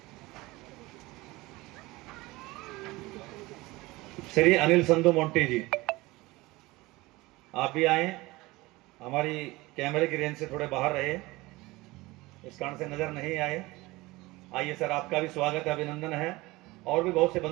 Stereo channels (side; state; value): left; quieter; 21.0 dB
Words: श्री अनिल संधू मोंटी जी आप भी आए, हमारी कैमरे की रेंज से थोड़े बाहर रहे, इस कारण से नजर नहीं आए। आइए सर, आपका भी स्वागत है, अभिनंदन है। और भी बहुत से